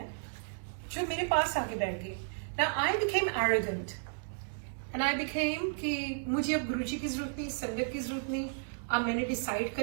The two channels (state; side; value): silent; left; digital silence